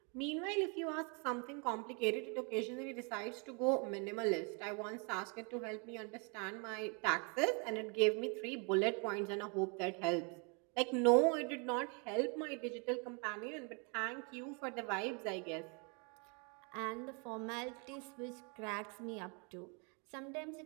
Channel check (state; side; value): quieter; left; 35.3 dB